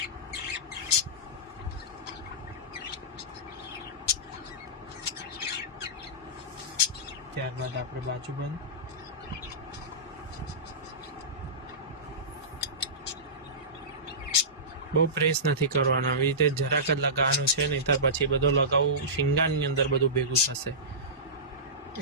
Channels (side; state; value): both; normal; correlation -0.19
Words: ત્યારબાદ આપણે બાજુબંધ. બહુ પ્રેસ નથી કરવાનો, આવી રીતે જરાક જ લગાવવાનું છે, નહીંતર પછી બધો લગાવું શિંગારની અંદર બધું ભેગું થશે,